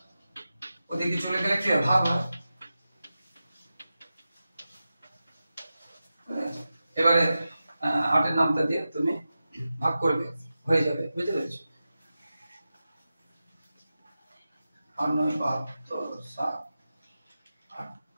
ওদিকে চলে গেলে কি ভাগ হয়। এবারে 8 এর নামটা দিয়ে তুমি ভাগ করবে, হয়ে যাবে, বুঝতে পেরেছো? 8 9 72 7 8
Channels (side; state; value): both; inverted; correlation -0.93